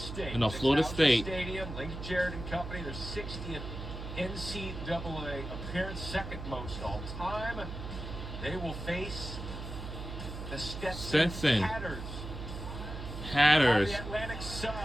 No, Florida State. Stadium, Link Jarrett and Company, their 60th NCAA appearance, 2nd most all time. They will face the Stetson Hatters. The Atlantic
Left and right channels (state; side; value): noise; right; hum, 8 dB below the sound